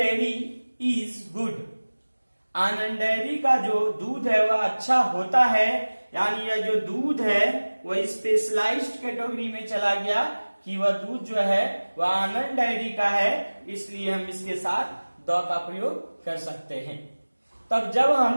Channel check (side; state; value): both; inverted; correlation -1.00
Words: is good, Anand dairy का जो दूध है वह अच्छा होता है, यानी यह जो दूध है वह स्पेशलाइज्ड कैटेगरी में चला गया कि वह दूध जो है वह आनंद डेयरी का है, इसलिए हम इसके साथ द का प्रयोग कर सकते हैं। तब जब